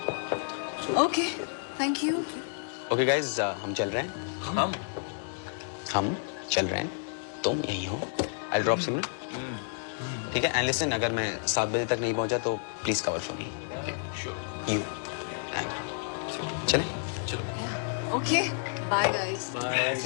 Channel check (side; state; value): right; silent; digital silence